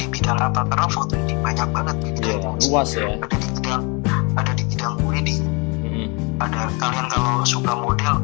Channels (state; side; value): quieter; right; 30.4 dB